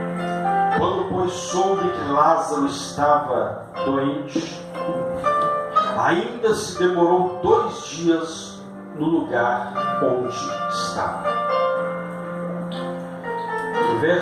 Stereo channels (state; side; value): identical; both; correlation 1.00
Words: Quando, pois, soube que Lázaro estava doente, ainda se demorou 2 dias no lugar onde estava. O